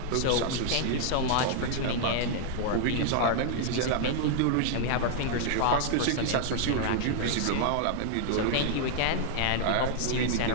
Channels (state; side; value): different; both; correlation 0.00